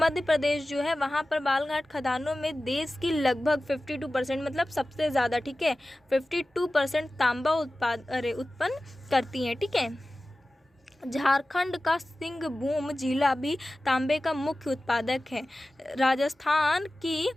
प्रदेश जो है वहाँ पर बालाघाट खदानों में देश की लगभग 52% मतलब सबसे ज़्यादा, ठीक है, 52% तांबा उत्पन्न करती हैं। ठीक है, झारखंड का सिंहभूम जिला भी तांबे का मुख्य उत्पादक है। राजस्थान की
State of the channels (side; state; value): both; normal; correlation 0.96